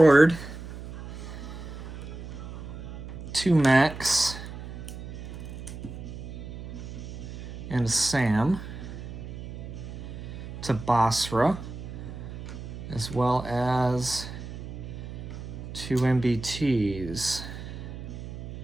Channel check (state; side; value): noise; right; hum, 10 dB below the sound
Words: 2 mechs and Sam to Basra, as well as 2 MBTs.